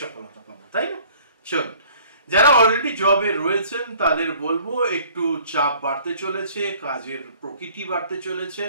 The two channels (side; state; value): both; inverted; correlation -0.54